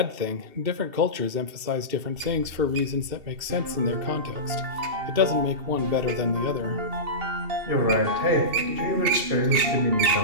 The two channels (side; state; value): left; late; 2.7 ms